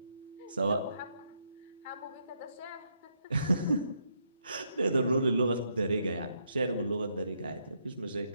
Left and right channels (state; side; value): inverted; both; correlation -0.76